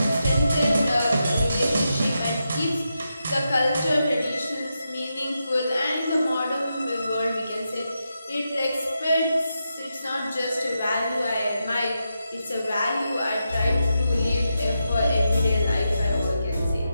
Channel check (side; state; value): both; inverted; correlation -0.87